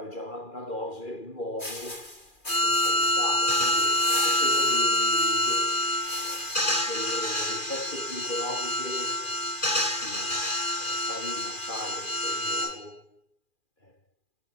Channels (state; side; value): late; right; 2.4 ms